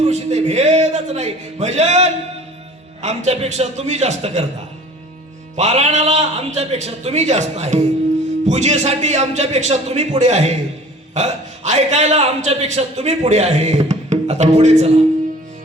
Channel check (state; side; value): normal; both; correlation 0.47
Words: इथे भेदच नाही. भजन आमच्यापेक्षा तुम्ही जास्त करता, पारायणाला आमच्यापेक्षा तुम्ही जास्त आहे, पूजेसाठी आमच्यापेक्षा तुम्ही पुढे आहे, ऐकायला आमच्यापेक्षा तुम्ही पुढे आहे. आता पुढे चला.